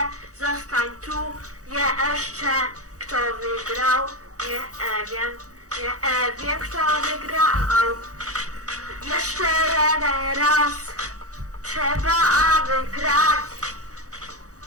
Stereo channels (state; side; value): late; left; 0.66 ms